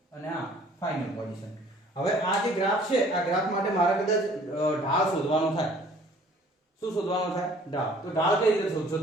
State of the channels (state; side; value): normal; both; correlation 0.54